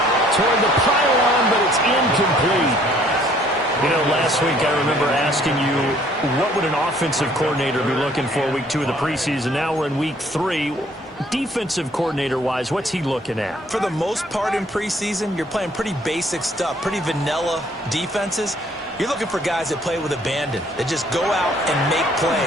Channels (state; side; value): normal; both; correlation 0.60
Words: Toward the pylon, but it's incomplete. You know, last week I remember asking you, what would an offensive coordinator be looking for week 2 of the preseason? Now we're in week 3. Defensive coordinator-wise, what's he looking at? For the most part in preseason, you're playing pretty basic stuff, pretty vanilla defenses. You're looking for guys that play with abandon, that just go out and make